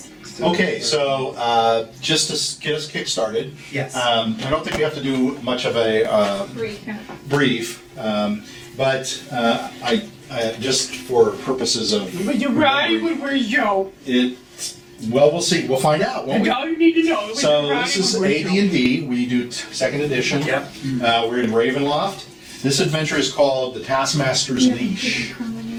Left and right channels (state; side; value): identical; both; correlation 1.00